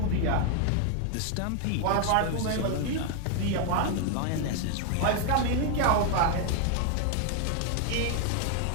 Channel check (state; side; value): different; both; correlation 0.00